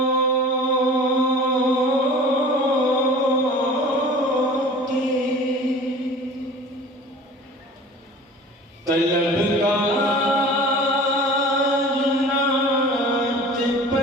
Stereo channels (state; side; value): normal; both; correlation 0.42